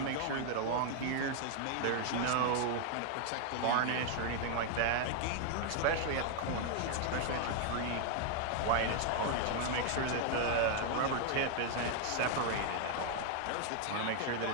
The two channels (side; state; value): both; different; correlation 0.00